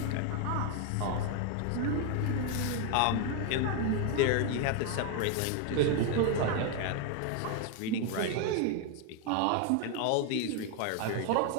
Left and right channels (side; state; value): both; different; correlation 0.01